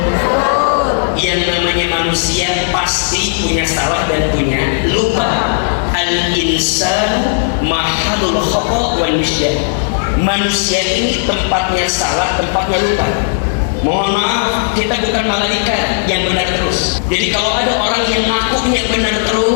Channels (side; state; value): right; silent; digital silence